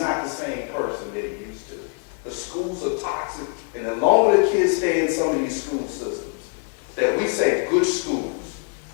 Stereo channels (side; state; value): right; quieter; 38.1 dB